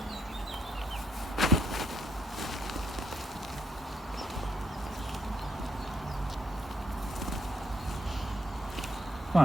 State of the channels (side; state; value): both; normal; correlation 0.75